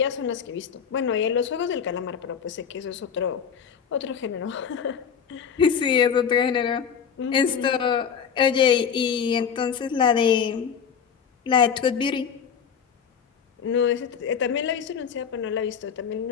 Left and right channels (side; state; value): right; quieter; 7.3 dB